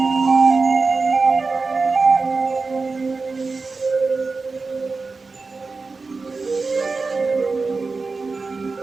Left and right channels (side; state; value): left; quieter; 4.1 dB